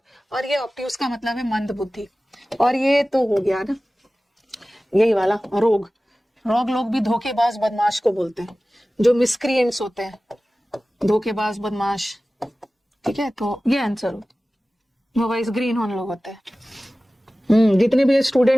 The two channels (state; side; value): normal; both; correlation 0.97